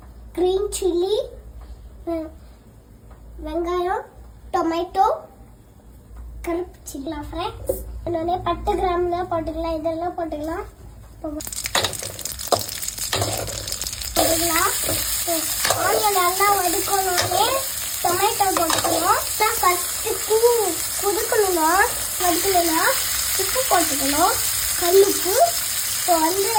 க்ரீன் சில்லி, வெங்காயம், டொமேட்டோ, கருப்பு சில்லி ஃப்ரெண்ட்ஸ். இன்னொன்னே பட்டை கிராம்லாம் போட்டுக்கலாம், இதெல்லாம் போட்டுக்கலாம். ஆனியன் நல்லா வதக்கணுன்னே டொமேட்டோ போட்டுக்கணும். ஃபஸ்ட்டு குதுக்கணும்னா வதக்கணும்னா உப்பு போட்டுக்கணும், கல்லுப்பு. இப்போ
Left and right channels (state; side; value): identical; both; correlation 1.00